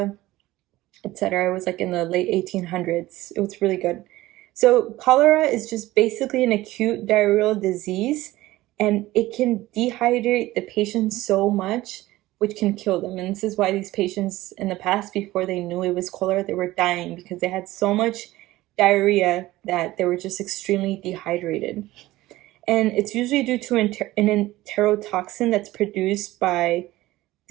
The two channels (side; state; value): left; quieter; 17.4 dB